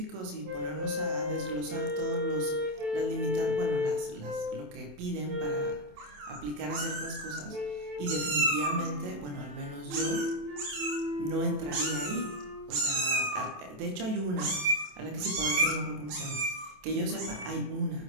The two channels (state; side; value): late; left; 27 ms